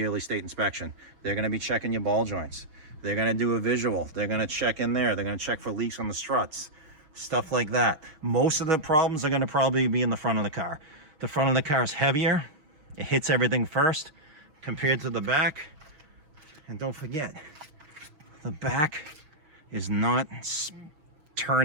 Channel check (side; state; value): left; late; 6.6 ms